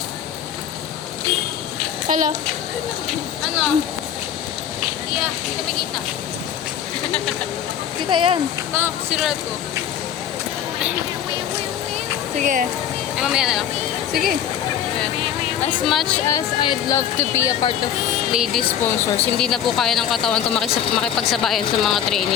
Hello. Ano? Yeah, hindi kami kita. Kita yan. Ito, sirulat ko. Sige. Ay, mamaya na lang. Sige. As much as I'd love to be a part of lady sponsors, hindi na po kaya ng katawan ko makipagsabayan sa mga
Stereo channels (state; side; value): quieter; right; 9.7 dB